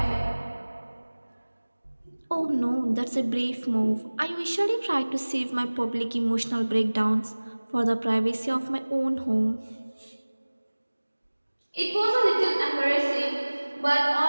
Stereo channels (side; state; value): both; inverted; correlation -1.00